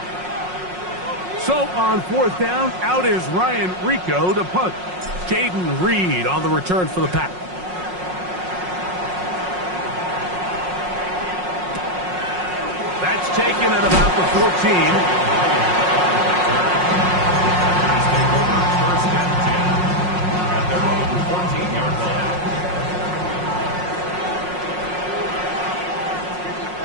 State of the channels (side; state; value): left; late; 5.5 ms